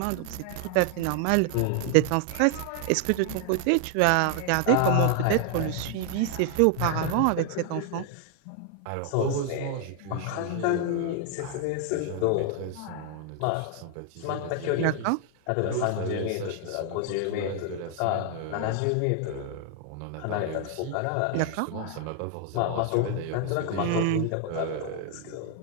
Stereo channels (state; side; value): different; both; correlation 0.00